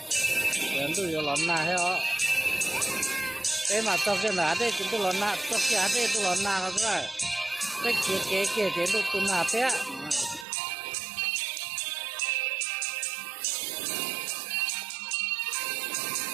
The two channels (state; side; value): drops out; left; at 10.5 s